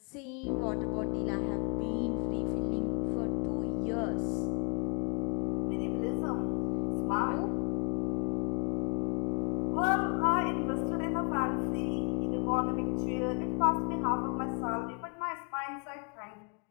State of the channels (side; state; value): right; quieter; 33.7 dB